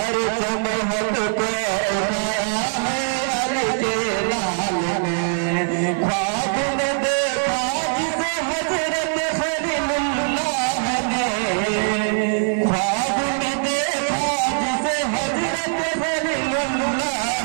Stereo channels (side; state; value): left; silent; 64 dB below the other